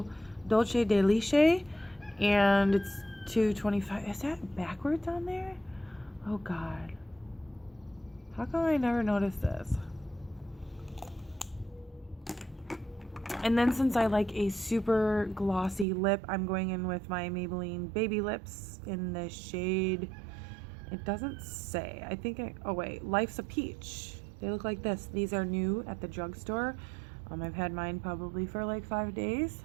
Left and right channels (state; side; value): drops out; left; at 15.9 s